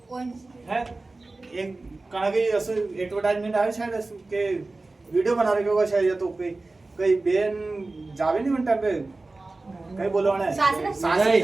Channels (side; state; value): left; quieter; 3.3 dB